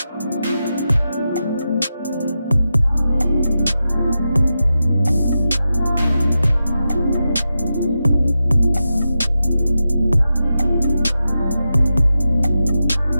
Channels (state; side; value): inverted; both; correlation -0.90